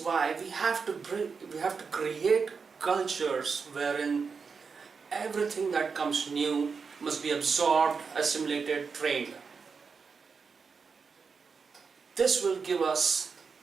why we have to create cultures wherein everything that comes new must be absorbed, assimilated, trained. This will give us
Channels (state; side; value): quieter; left; 5.3 dB